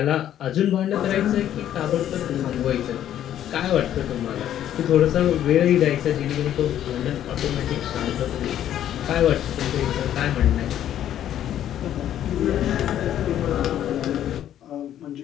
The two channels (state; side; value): quieter; right; 11.1 dB